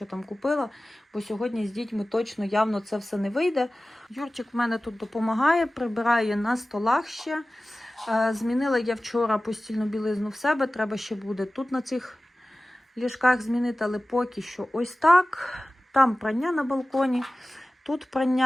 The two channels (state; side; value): normal; both; correlation 0.97